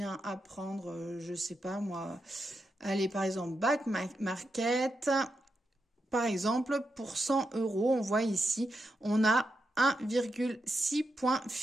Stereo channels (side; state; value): both; normal; correlation 0.86